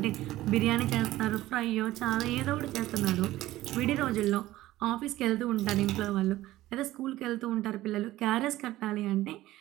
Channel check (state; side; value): quieter; left; 16.0 dB